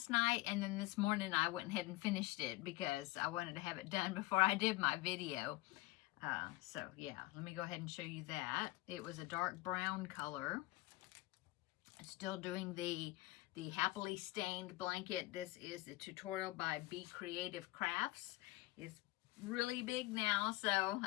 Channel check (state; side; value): quieter; right; 19.8 dB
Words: night, and then this morning I went ahead and finished it because I wanted to have it done before I did my video. So yeah, let me go ahead and show you that. It was a dark brown color. Still doing the happily stained blanket. This is a tutorial by Be Creative Crafts. It's really big now, so